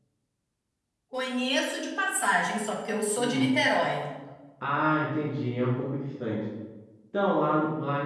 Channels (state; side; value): identical; both; correlation 1.00